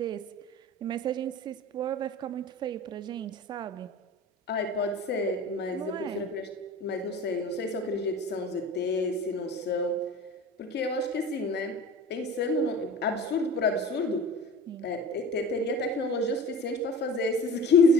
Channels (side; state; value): both; normal; correlation 0.38